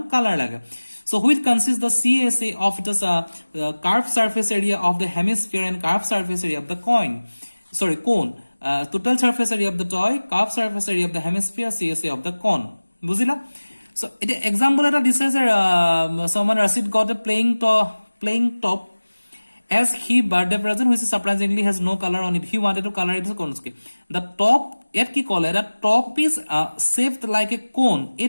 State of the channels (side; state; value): both; inverted; correlation -1.00